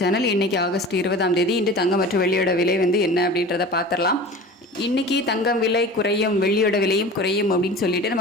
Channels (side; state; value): both; normal; correlation 0.37